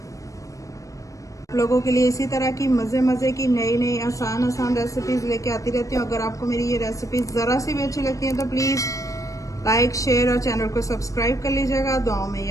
लोगों के लिए इसी तरह की मज़े की नई आसान रेसिपीज़ लेके आती रहती हूँ। अगर आपको मेरी ये रेसिपीज़ ज़रा सी भी अच्छी लगती हैं तो प्लीज़ लाइक, शेयर और चैनल को सब्सक्राइब कर लीजिएगा। दुआओं में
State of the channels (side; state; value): right; late; 0.16 ms